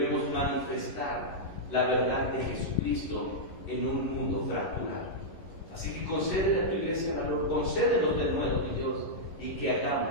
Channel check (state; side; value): late; right; 11 ms